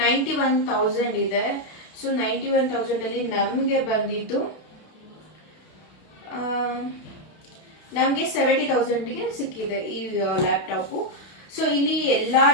ಇದೆ. ಸೊ 91,000 ಅಲ್ಲಿ ನಮಗೆ ಬಂದಿದ್ದು ನಮಗೆ 70,000ಗೆ ಸಿಕ್ಕಿದೆ ಈ ಲ್ಯಾಪ್ಟಾಪು. ಸೊ ಇಲ್ಲಿ ಎಲ್ಲ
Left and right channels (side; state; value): right; late; 32 ms